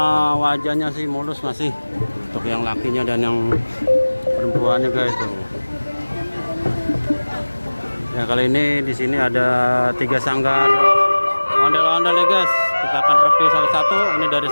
wajahnya sih mulus masih. Untuk yang lakinya dan yang perempuannya guys tuh. Ya kali ini di sini ada 3 sanggar ondel-ondel ya guys. Kita akan review satu-satu. Ini dari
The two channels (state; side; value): inverted; both; correlation -1.00